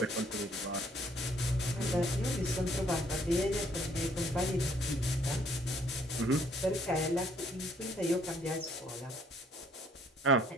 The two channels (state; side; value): normal; both; correlation 0.63